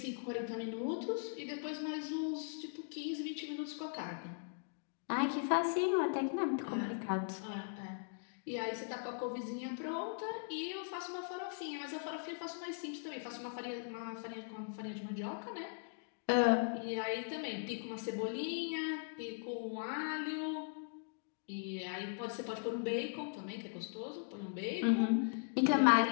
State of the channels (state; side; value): silent; right; digital silence